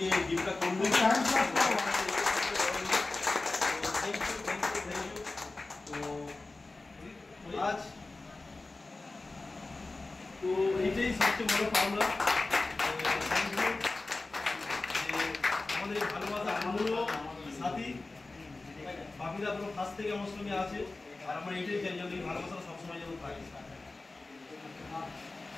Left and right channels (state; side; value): quieter; right; 3.3 dB